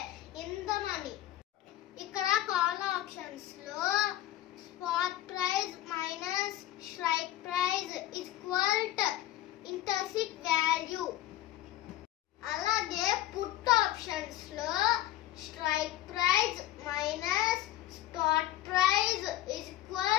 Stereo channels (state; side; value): quieter; right; 14.1 dB